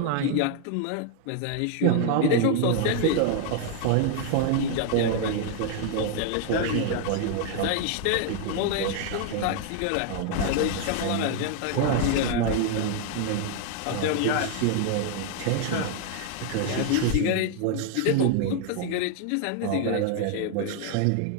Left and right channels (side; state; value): both; different; correlation 0.00